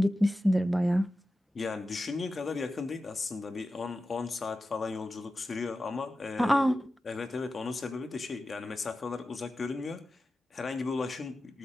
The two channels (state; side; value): normal; both; correlation 0.93